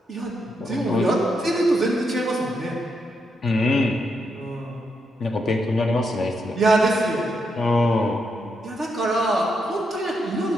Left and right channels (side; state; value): both; normal; correlation 0.81